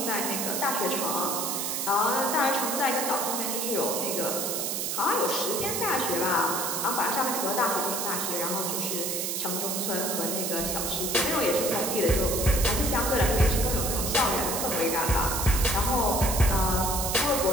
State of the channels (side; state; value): right; noise; hiss, 1 dB below the sound